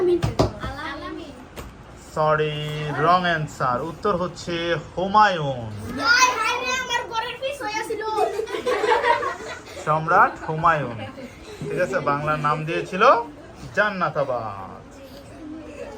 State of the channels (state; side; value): identical; both; correlation 1.00